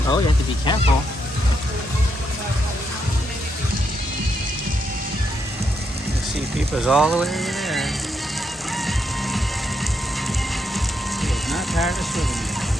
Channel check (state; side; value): normal; both; correlation 0.79